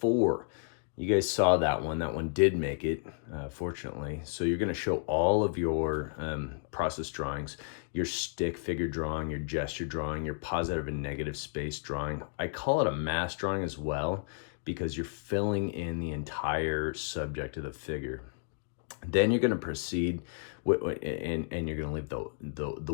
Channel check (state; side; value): silent; right; digital silence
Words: you guys saw that one did make it, fortunately. So you're gonna show all of your process drawings, your stick figure drawing, your gesture drawing, your positive and negative space drawing. I call it a mass drawing as well, because you're filling in the entire subject of the figure. Then you're gonna proceed and you're gonna leave the